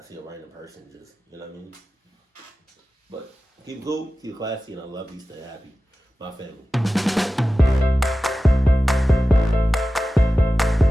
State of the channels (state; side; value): normal; both; correlation 0.95